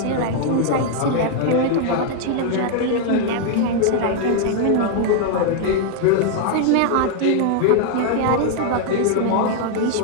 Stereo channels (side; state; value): both; different; correlation 0.00